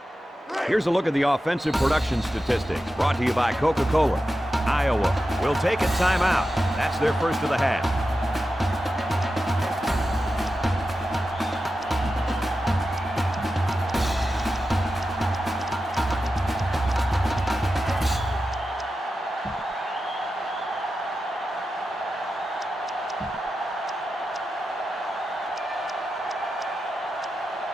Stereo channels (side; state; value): both; normal; correlation 0.91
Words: Here's a look at the offensive production statistics brought to you by Coca-Cola. Iowa will take a timeout. That's their first of the half.